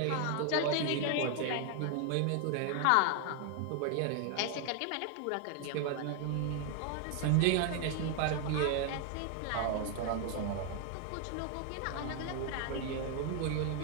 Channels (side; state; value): both; different; correlation 0.00